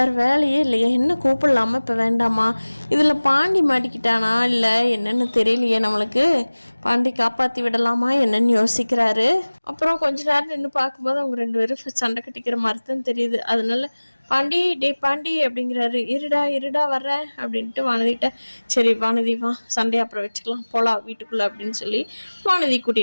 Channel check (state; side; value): inverted; both; correlation -1.00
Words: வேலையே இல்லையா, என்ன கூப்பிடலாமா இப்போ வேண்டாமா? இதில் பாண்டி மாட்டிக்கிட்டானா இல்லை என்னென்னு தெரியலையே நம்மளுக்கு. பாண்டி காப்பாற்றி விடலாமா என்னன்னு யோசிக்கிறாரு. அப்புறம் கொஞ்ச நேரம் நின்று பார்க்கும்போது அவங்க ரெண்டு பேரும் சண்டை கட்டிக்கிற மாதிரி தான் தெரியுது. அதனால பாண்டி அப்படிங்கிறாரு. இருடா வர்றேன் அப்படின்ட்டு வானதிட்ட, சரி வானதி வா, சண்டையை அப்புறம் வச்சுக்கலாம், போகலாம் வீட்டுக்குள்ளே அப்படின்னு சொல்லி வானதி